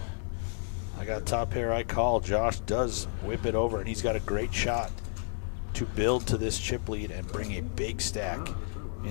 I got top pair, I call. Josh does whip it over, and he's got a great shot to build to this chip lead and bring a big stack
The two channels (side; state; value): right; silent; 57 dB below the other